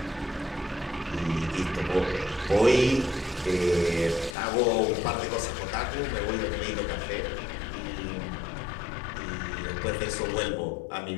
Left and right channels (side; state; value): right; drops out; at 4.4 s